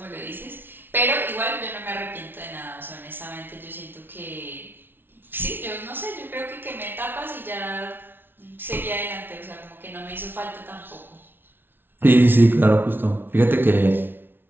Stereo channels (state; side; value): late; left; 0.10 ms